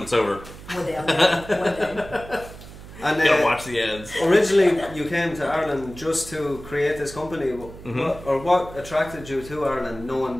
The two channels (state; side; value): noise; right; hum, 16 dB below the sound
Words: it's over. One day I'll be there. One day. And Gotta watch the ads. originally, you came to Ireland just to create this company. What attracted you to Ireland, knowing